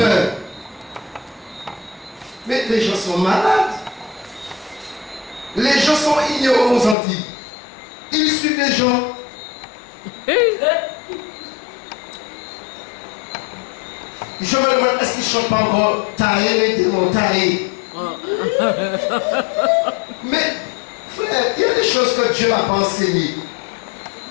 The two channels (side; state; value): right; drops out; at 7.0 s